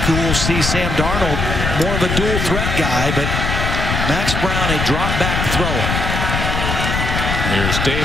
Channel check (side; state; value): left; noise; rumble, 1 dB below the sound